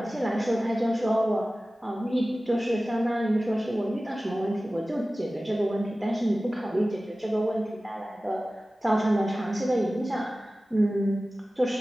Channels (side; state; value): both; normal; correlation 0.97